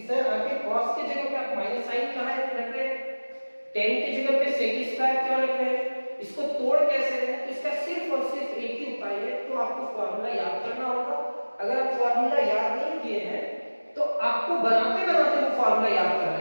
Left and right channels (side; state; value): both; inverted; correlation -1.00